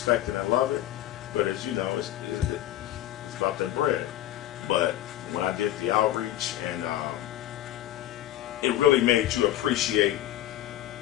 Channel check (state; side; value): quieter; right; 13.3 dB